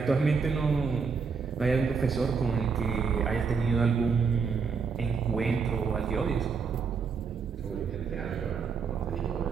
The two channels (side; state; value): left; quieter; 5.5 dB